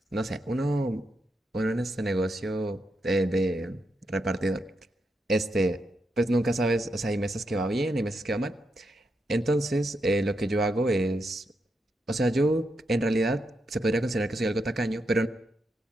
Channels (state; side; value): normal; both; correlation 0.83